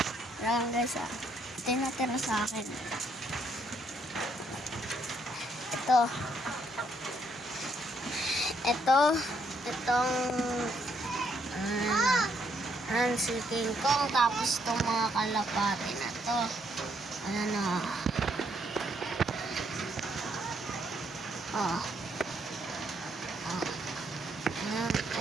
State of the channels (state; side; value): normal; both; correlation 0.72